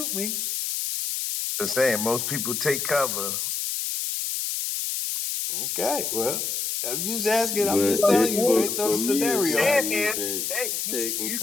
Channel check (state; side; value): noise; left; hiss, 2 dB below the sound